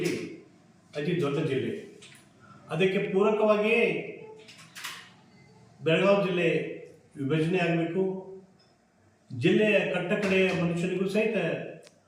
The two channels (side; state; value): both; identical; correlation 1.00